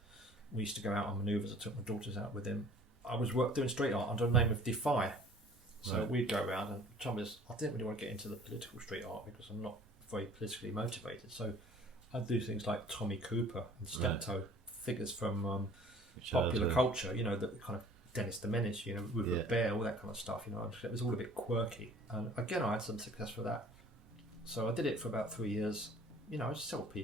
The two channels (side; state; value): both; normal; correlation 0.51